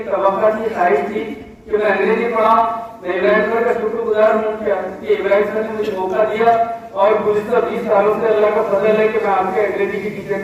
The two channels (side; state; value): both; identical; correlation 1.00